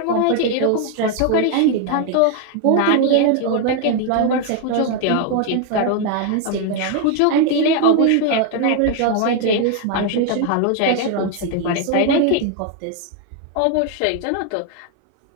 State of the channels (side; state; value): both; different; correlation 0.00